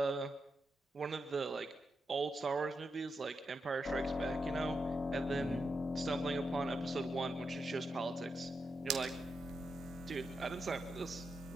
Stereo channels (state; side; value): normal; both; correlation 0.86